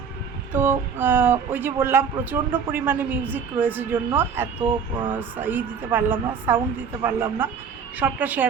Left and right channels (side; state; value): left; quieter; 6.6 dB